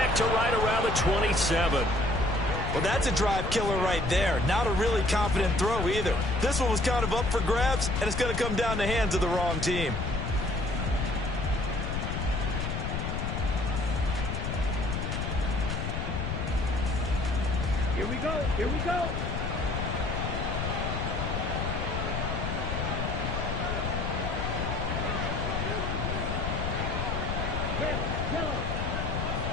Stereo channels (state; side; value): noise; left; rumble, 2 dB below the sound